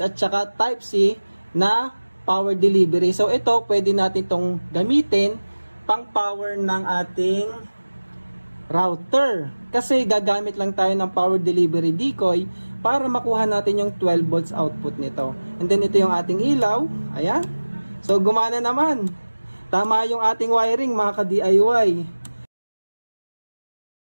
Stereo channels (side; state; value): both; inverted; correlation -1.00